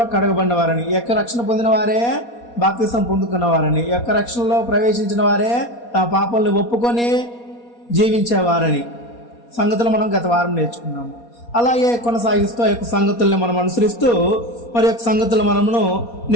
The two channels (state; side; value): late; right; 4.2 ms